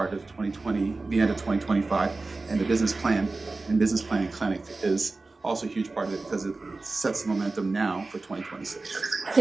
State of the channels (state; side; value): quieter; left; 3.5 dB